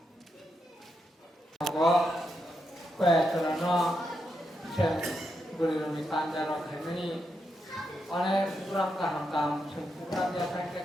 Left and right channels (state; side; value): normal; both; correlation 0.83